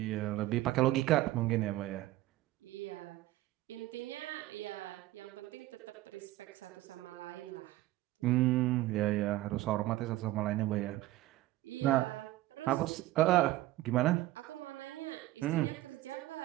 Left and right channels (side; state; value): left; quieter; 16.5 dB